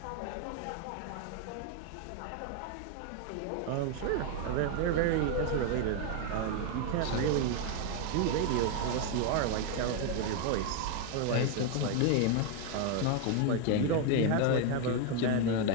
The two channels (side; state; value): both; different; correlation 0.01